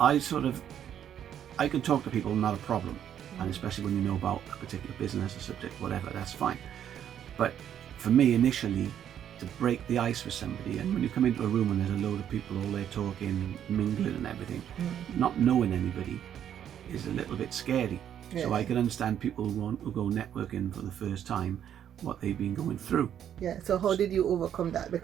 can talk to people, not a problem. And especially when you know about a particular business, a subject, whatever, that's fine. But for me, initially, to break the ice with somebody, and when you come into a room and there's a load of people all there talking, mingling and everything, not knowing anybody is a little bit scary. Yeah. So I can understand people who go networking for the first time, what they've been going through. Yeah, so how did you overcome that?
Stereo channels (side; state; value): left; quieter; 9.7 dB